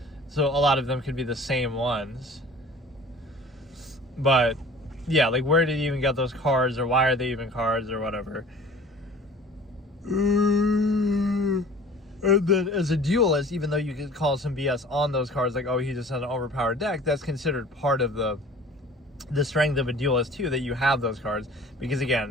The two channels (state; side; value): normal; both; correlation 0.46